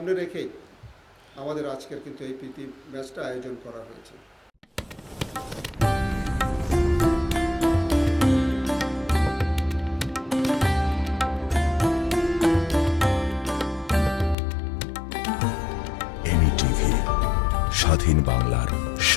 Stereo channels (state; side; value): drops out; right; at 14.4 s